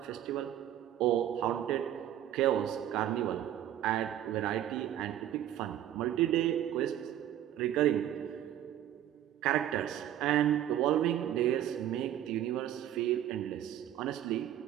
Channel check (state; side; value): quieter; left; 11.6 dB